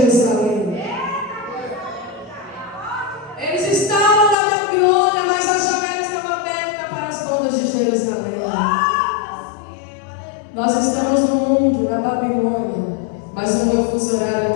Eles estavam na Babilônia, mas a janela estava aberta para as bandas de Jerusalém. Nós estamos no mundo, na Babilônia, mas o meu fuso horário é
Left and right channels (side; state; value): right; drops out; at 4.4 s